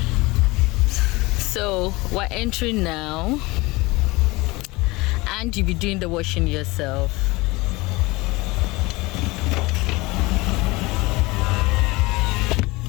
So we're entering now and you'll be doing the washing yourself.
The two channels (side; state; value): right; quieter; 22.7 dB